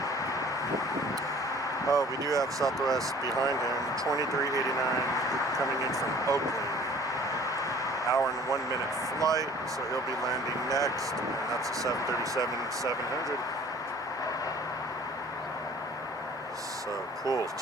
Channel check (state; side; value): normal; both; correlation 0.50